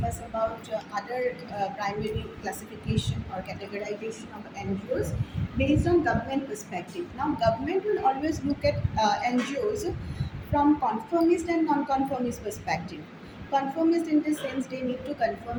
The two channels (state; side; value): identical; both; correlation 1.00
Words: about other primary classification or categorization of NGOs based on government perspective. Now government will always look at NGOs from conformist and non-conformist perspective. Conformist in the sense they need to